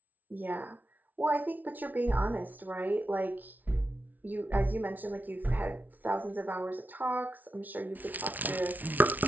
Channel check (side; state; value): left; late; 0.079 ms